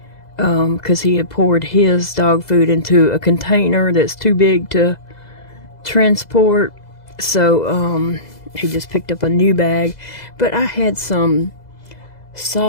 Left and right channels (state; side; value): late; right; 2.0 ms